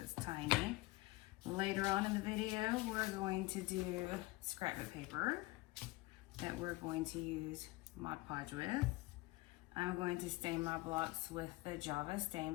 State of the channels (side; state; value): right; quieter; 20.2 dB